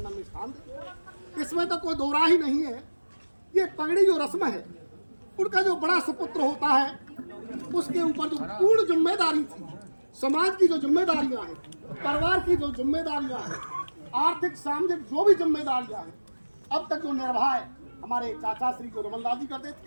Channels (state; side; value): inverted; both; correlation -1.00